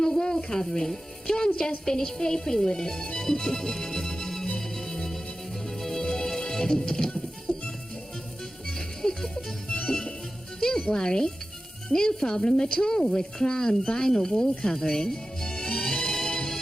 wall covering. John's just finished papering with it. Don't worry. No problem at all with Crown vinyl wall covering.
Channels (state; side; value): normal; both; correlation 0.94